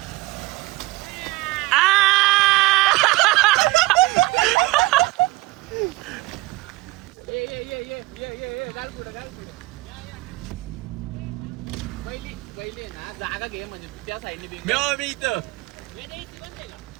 जागा घे म्हणजे त्या साईडने मी इथं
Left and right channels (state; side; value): quieter; left; 19.8 dB